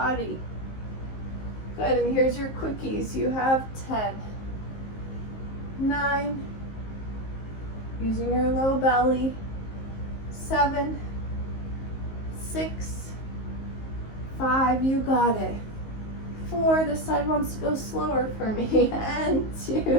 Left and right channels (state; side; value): late; right; 19 ms